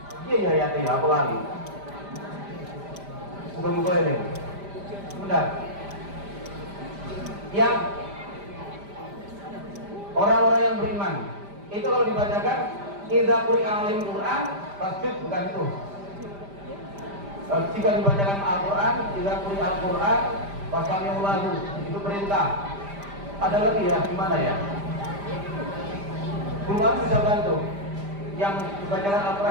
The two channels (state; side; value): late; left; 5.0 ms